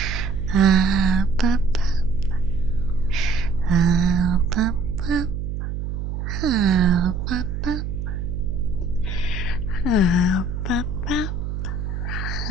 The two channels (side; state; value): right; noise; hum, 4 dB below the sound